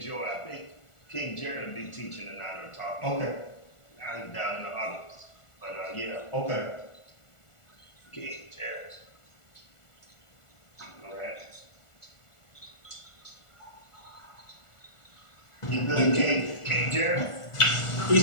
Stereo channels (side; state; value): right; late; 1.4 ms